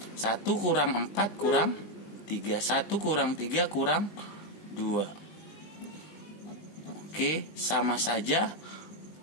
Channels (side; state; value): right; late; 19 ms